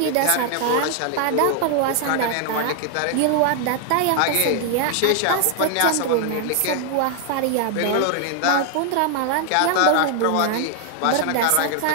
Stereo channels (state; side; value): different; both; correlation 0.00